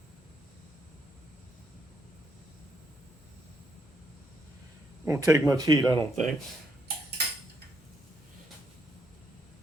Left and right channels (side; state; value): both; normal; correlation 0.75